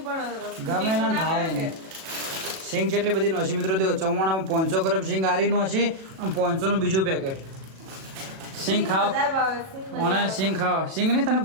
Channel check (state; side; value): late; left; 37 ms